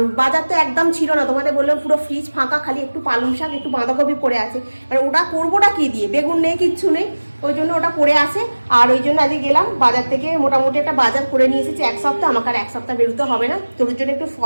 বাজার তো একদম ছিল না, তোমাদের বললাম পুরো ফ্রিজ ফাঁকা, খালি একটু পালং শাক একটু বাঁধাকপি পড়ে আছে। আর ওটা করবোটা কি দিয়ে, বেগুন নেই, কিচ্ছু নেই, ওই জন্য ওটা পড়ে আছে। আর ওই জন্য আজকে গেলাম বাজার থেকে, মোটামুটি একটা বাজার করে নিয়ে এসেছি 1 সপ্তাহ। আমাকে আর 1 সপ্তাহ বেরোতে হবে না, তোর জন্য একটু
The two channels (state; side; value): inverted; both; correlation -1.00